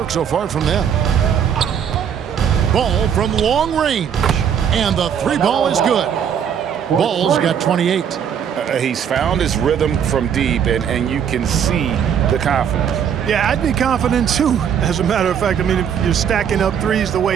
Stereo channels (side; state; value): left; quieter; 8.2 dB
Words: so far from them. Ball from long range, and the 3 ball is good. Ball's got 28. He's found his rhythm from deep, and you can see the confidence. Yeah, I'd be confident too. As a matter of fact, I mean, if you're stacking up threes the